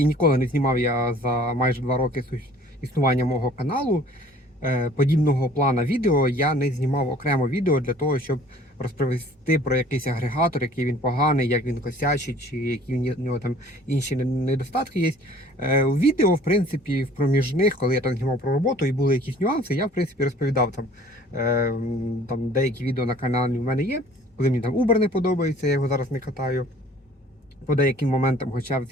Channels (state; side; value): normal; both; correlation 0.52